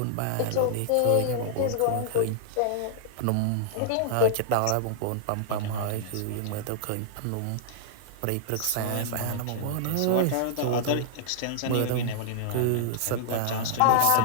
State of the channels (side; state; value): both; different; correlation -0.01